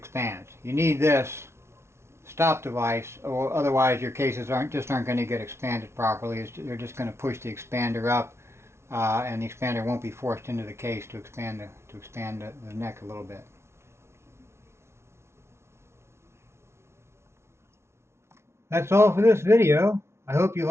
You need this stop device, or otherwise your cases aren't going to get expanded properly. They're just going to push the expander up, and the expander won't be forced into the case to expand the neck a little bit. That's all for this video. I hope you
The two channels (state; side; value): late; left; 0.13 ms